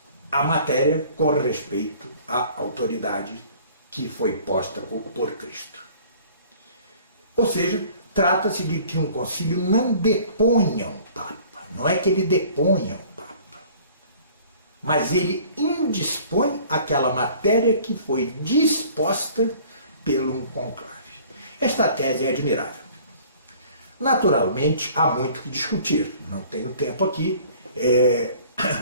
a matéria com respeito à autoridade que foi posta por Cristo. Ou seja, trata-se de que um concílio não deponha um Papa, não é que ele deponha um Papa, mas ele indispõe aquela matéria que foi disposta pelo conclave. Esta tese é admirável. Naturalmente, há muito que discutir, não tenho tempo aqui,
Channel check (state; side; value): inverted; both; correlation -0.51